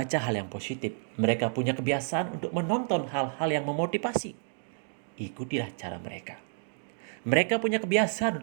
hal yang positif. Mereka punya kebiasaan untuk menonton hal-hal yang memotivasi. Ikutilah cara mereka. Mereka punya kebiasaan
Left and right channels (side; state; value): left; silent; 58 dB below the other